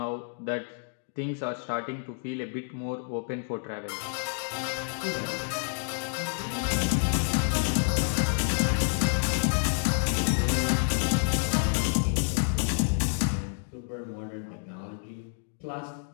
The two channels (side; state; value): right; silent; digital silence